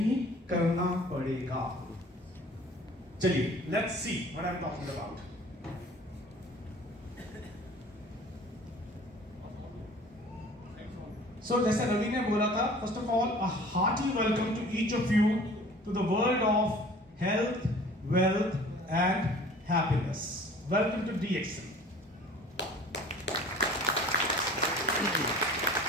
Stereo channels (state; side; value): normal; both; correlation 0.47